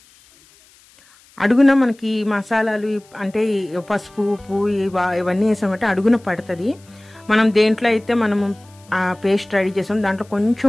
అడుగున మనకి మసాలాలు అంటే పసుపు ఉప్పు ఇవన్నీ వేసామంటే అడుగున పడుతుంది. మనం దేంట్లో అయితే మనము ఆ పేస్ట్ రెడీ చేసాం దాంట్లో కొంచెం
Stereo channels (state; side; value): noise; left; hiss, 29 dB below the sound